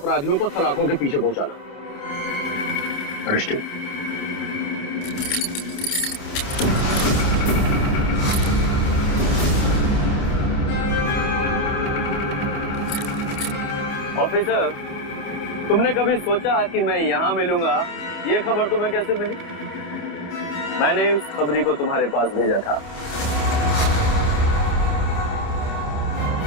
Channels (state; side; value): late; right; 28 ms